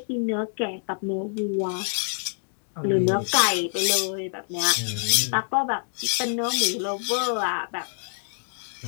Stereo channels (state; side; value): silent; right; 59 dB below the other